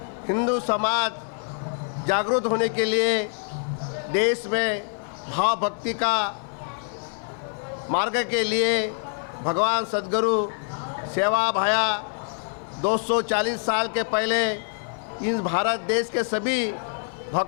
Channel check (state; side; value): silent; right; 61 dB below the other